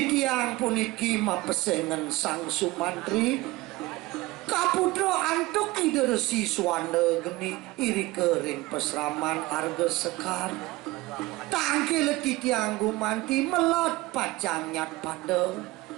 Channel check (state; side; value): quieter; left; 20.2 dB